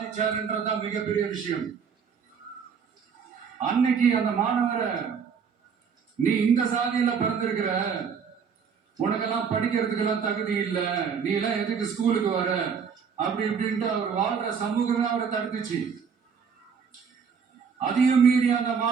மிகப்பெரிய விஷயம். அன்னைக்கு அந்த மாணவரை, நீ இந்த சாதியில பிறந்திருக்கிற, உனக்கெல்லாம் படிக்கிறதுக்கெல்லாம் தகுதி இல்ல, நீ எல்லாம் எதுக்கு ஸ்கூலுக்கு வர அப்படி இப்படின்ட்டு அவர் வாழ்ற சமூகம் அவரை தடுத்துச்சு. அதையும் மீறி அந்த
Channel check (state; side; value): quieter; left; 6.5 dB